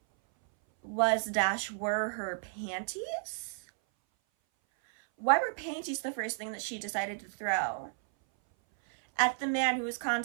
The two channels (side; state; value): left; silent; 56 dB below the other